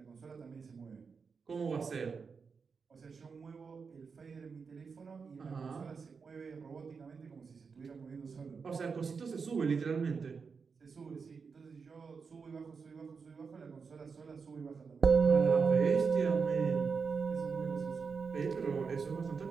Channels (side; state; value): left; quieter; 5.4 dB